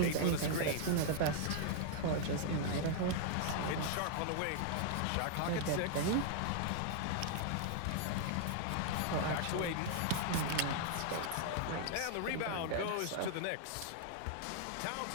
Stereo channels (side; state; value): both; different; correlation -0.01